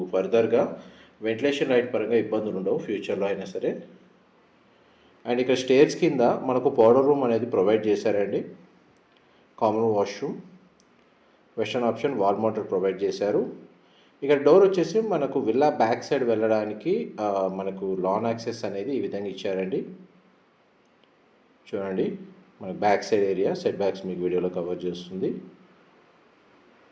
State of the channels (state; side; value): identical; both; correlation 1.00